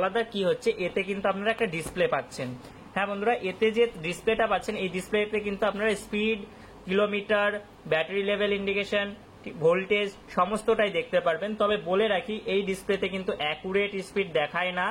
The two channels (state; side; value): identical; both; correlation 1.00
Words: কি হচ্ছে, এতে কিন্তু আপনারা একটা ডিসপ্লে পাচ্ছেন। হ্যাঁ বন্ধুরা, এতে যে ডিসপ্লেটা পাচ্ছেন এই ডিসপ্লেতে কিন্তু আপনারা speed, kilometre, battery level indication, voltage সমস্তটাই দেখতে পারবেন। তবে বলে রাখি এই ডিসপ্লেতে কিন্তু অ্যাকুরেট স্পিড দেখায় না,